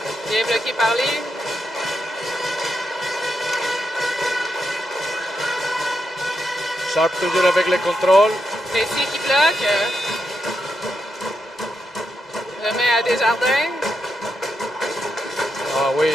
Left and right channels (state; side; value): normal; both; correlation 0.83